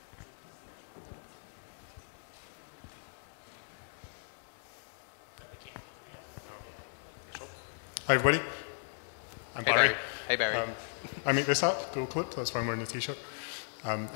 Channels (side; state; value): right; silent; 54 dB below the other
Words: Hi everybody, I'm Barry. Hey Barry. I make this app, Dual Clip, that's why I'm wearing the t-shirt.